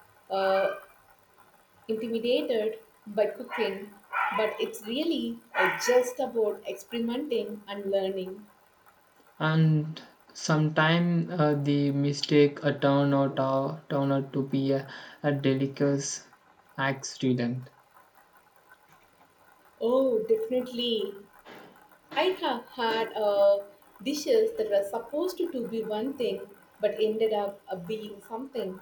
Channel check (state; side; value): identical; both; correlation 1.00